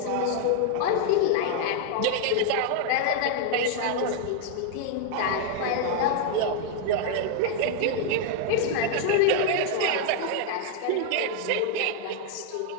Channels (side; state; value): both; different; correlation 0.00